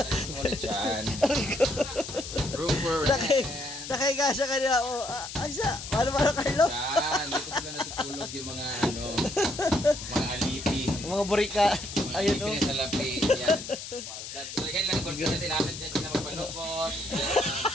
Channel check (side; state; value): left; noise; hiss, 9 dB below the sound